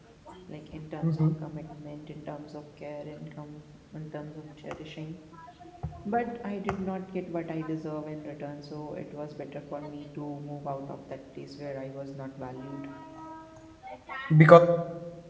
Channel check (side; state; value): both; identical; correlation 1.00